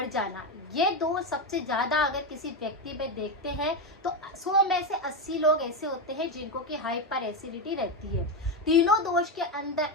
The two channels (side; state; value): both; normal; correlation 0.12